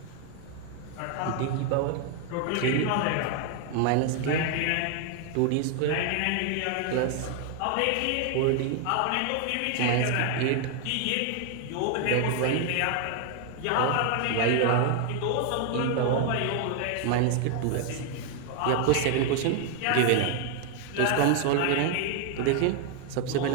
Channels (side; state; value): both; different; correlation 0.00